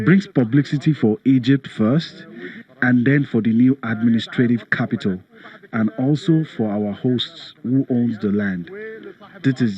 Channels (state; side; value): identical; both; correlation 1.00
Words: brings publicity for Egypt first, and then for the new administrative capital, and also for our hosts who owns the land. This is